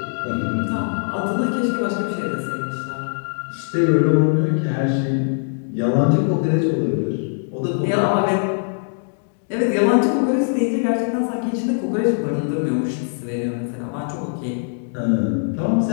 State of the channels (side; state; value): right; silent; digital silence